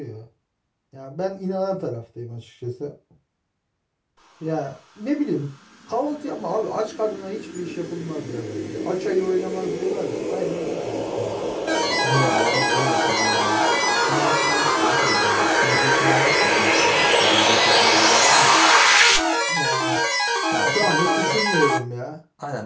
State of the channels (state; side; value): identical; both; correlation 1.00